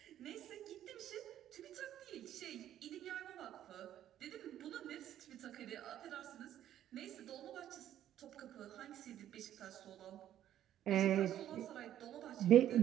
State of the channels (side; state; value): left; quieter; 11.5 dB